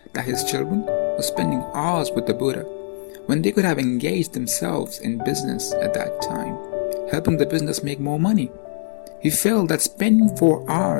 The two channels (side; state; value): right; silent; digital silence